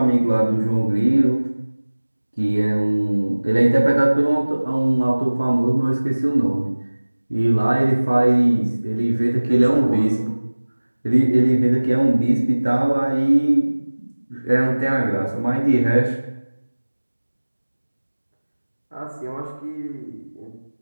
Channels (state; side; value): inverted; both; correlation -1.00